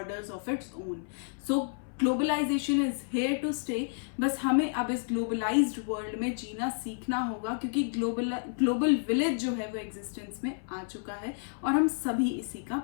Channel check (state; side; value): silent; right; 57 dB below the other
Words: of its own. So globalisation is here to stay. बस हमें अब इस ग्लोबलाइज्ड वर्ल्ड में जीना सीखना होगा, क्योंकि ग्लोबल विलेज जो है वो एग्जिस्टेंस में आ चुका है और हम सभी इसी का